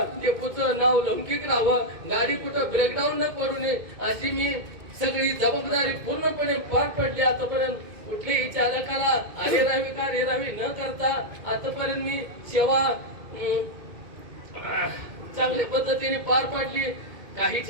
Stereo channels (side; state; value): left; late; 2.1 ms